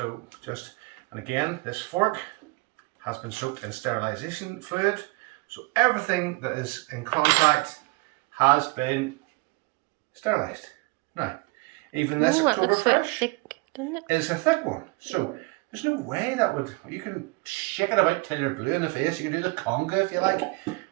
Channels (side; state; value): left; quieter; 26.4 dB